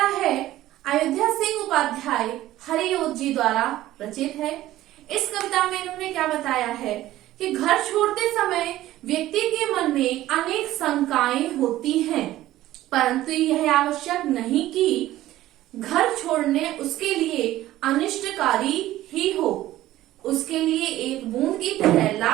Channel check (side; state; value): left; quieter; 15.0 dB